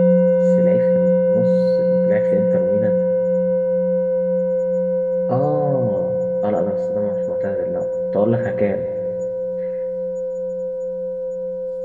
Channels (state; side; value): identical; both; correlation 1.00